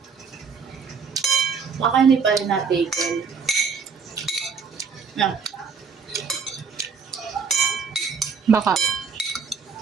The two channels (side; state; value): left; quieter; 5.8 dB